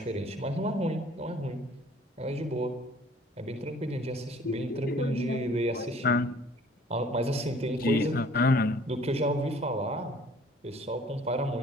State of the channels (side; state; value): both; normal; correlation 0.54